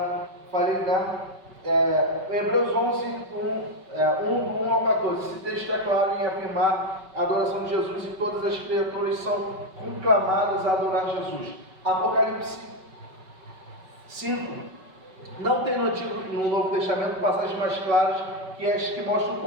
falei, né? Hebreus 11, 1 ao 14. Esse texto é claro em afirmar a adoração de Jesus e todas as criaturas são conclamadas a adorar Jesus. Apocalipse 5. Não tem no Novo Testamento passagens mais claras que as que mostram o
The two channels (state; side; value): late; left; 5.3 ms